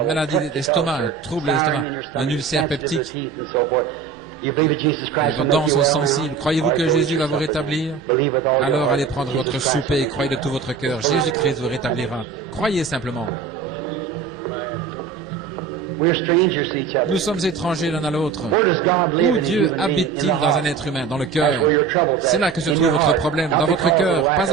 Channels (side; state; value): left; quieter; 5.7 dB